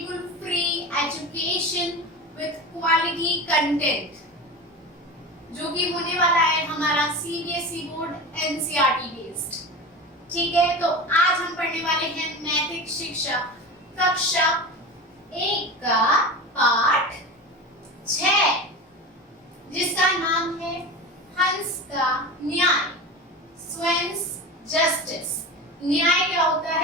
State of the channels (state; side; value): normal; both; correlation 0.29